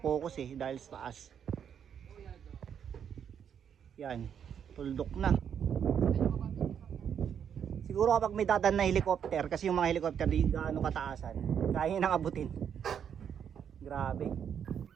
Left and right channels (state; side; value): quieter; left; 8.2 dB